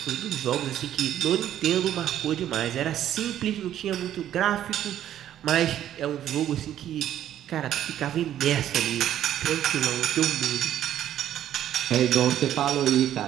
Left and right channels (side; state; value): left; quieter; 11.3 dB